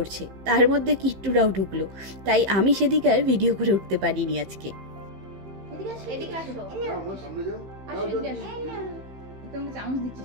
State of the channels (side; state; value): left; late; 15 ms